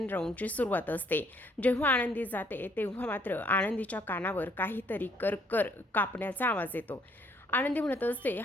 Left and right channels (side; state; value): both; normal; correlation 0.67